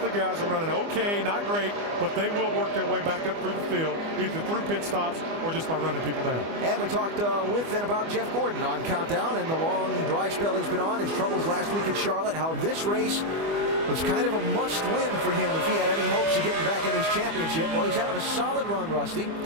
the guys are running okay, not great, but they will work their way back up through the field, either through pit stops or just by running people down. And we talked with and about Jeff Gordon on Countdown and the long dry spell he's been on, his troubles last week at Charlotte, how this race was kind of a must-win for him if he had any hopes of getting back in this championship. Well, he's having a solid run, Rusty.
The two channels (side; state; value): left; late; 25 ms